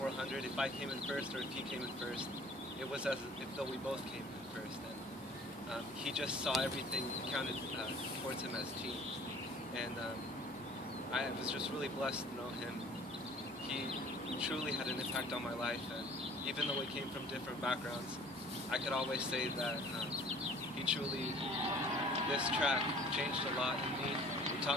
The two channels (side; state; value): both; normal; correlation 0.50